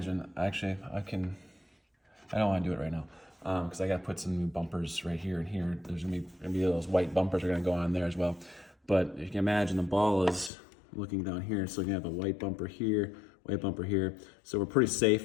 actually I don't want to do it right now because I got to put some new bumpers right here and here. There's gonna be those white bumpers are gonna go on there as well. But if you can imagine, the ball is looking down here, so you have a white bumper here, white bumper here. So we're pretty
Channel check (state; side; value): drops out; right; at 10.5 s